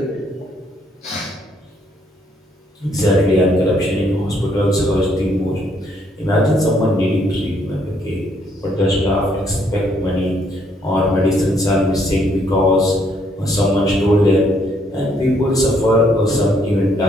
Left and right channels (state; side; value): normal; both; correlation 0.69